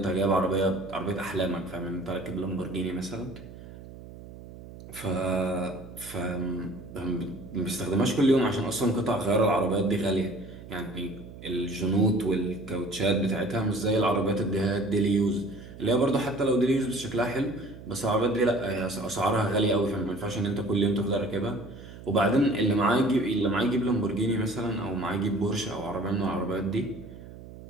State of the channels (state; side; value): noise; right; hum, 16 dB below the sound